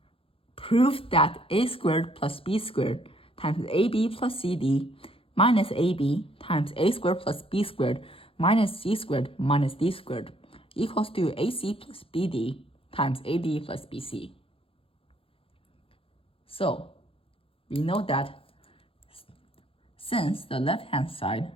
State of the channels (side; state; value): right; late; 0.27 ms